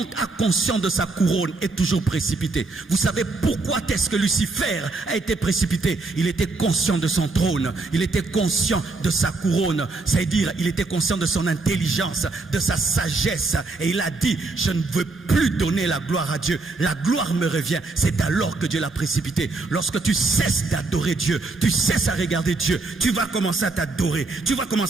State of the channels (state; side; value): quieter; left; 3.5 dB